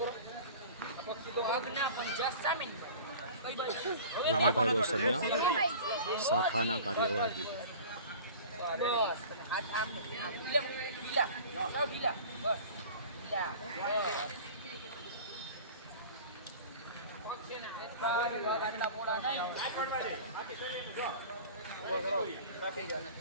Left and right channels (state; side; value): inverted; both; correlation -0.40